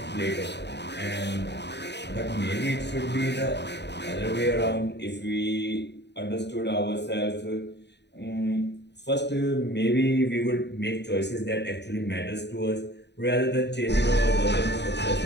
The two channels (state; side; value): late; right; 0.50 ms